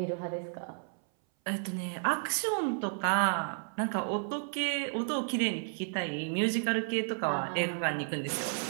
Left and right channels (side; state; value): left; silent; 56 dB below the other